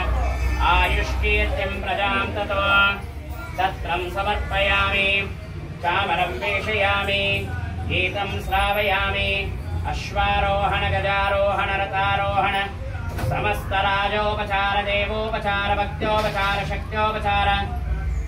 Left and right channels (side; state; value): both; identical; correlation 1.00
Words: आयुष्कीर्तिं प्रजां ततो तत्रं समर्पयामि चामरं वेशयामि गीतं श्रावयामि अश्वारोहण गजारोहण रथारोहण समस्तराजोपचार देवोपचार भक्त्योपचार शक्त्योपचार